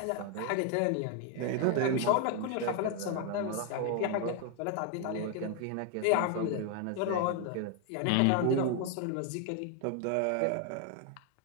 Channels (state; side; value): different; both; correlation 0.01